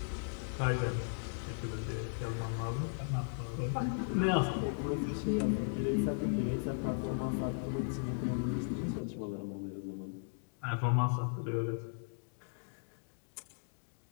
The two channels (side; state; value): right; silent; digital silence